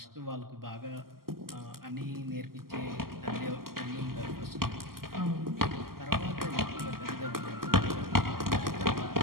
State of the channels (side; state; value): left; late; 0.92 ms